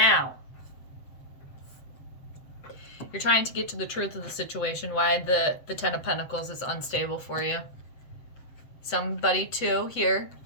You're trying to get to the truth of the situation, why the Ten of Pentacles is unstable for you. Somebody, too, here,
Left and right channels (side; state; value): right; late; 7.9 ms